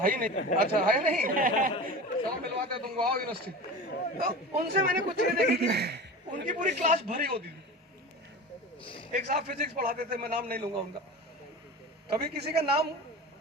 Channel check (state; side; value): normal; both; correlation 0.32